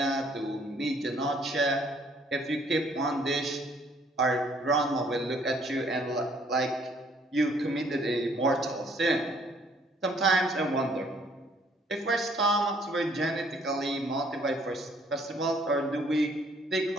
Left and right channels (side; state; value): both; normal; correlation 0.63